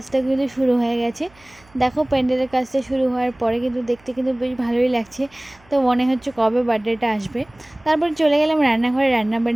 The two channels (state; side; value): noise; right; hum, 29 dB below the sound